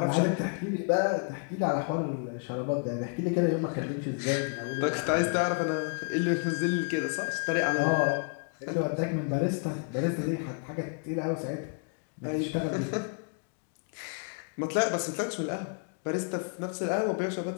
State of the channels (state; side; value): quieter; right; 39.9 dB